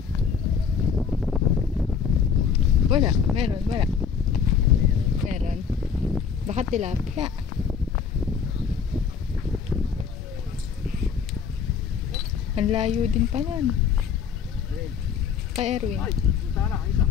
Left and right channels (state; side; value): quieter; right; 6.6 dB